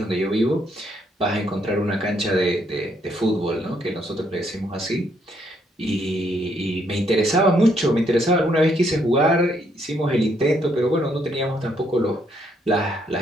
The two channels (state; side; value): normal; both; correlation 0.72